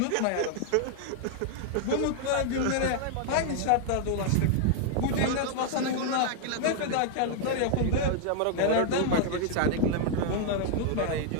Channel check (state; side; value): different; both; correlation 0.00